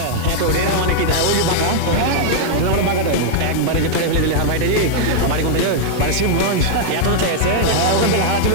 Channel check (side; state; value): both; different; correlation -0.01